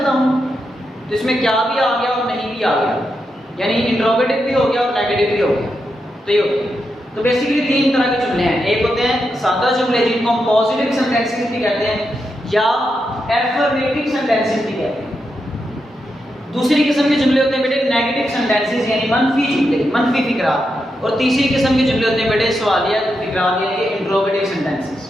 हूँ, तो इसमें क्या भी आ गया और नहीं भी आ गया, यानी इंट्रोगेटिव भी हो गया और नेगेटिव भी हो गया। तो ये होता है। तो बेसिकली 3 तरह के जुमले हैं। एक होते हैं सादा जुमले जिनको हम पॉजिटिव सेंटेंसेस भी कहते हैं या एफर्मेटिव सेंटेंसेस भी कहते हैं। दूसरी किस्म के जुमले होते हैं बेटे नेगेटिव सेंटेंसेस यानी मनफी जुमले, मनफी फिकरात। और तीसरी किस्म के जुमले होते हैं बेटे सवालिया फिकरात यानी इंट्रोगेटिव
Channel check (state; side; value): normal; both; correlation 0.85